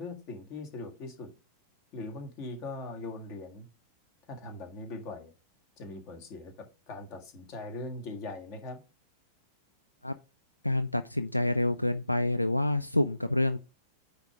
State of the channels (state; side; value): inverted; both; correlation -0.84